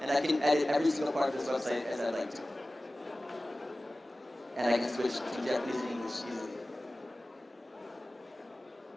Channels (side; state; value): both; normal; correlation 0.97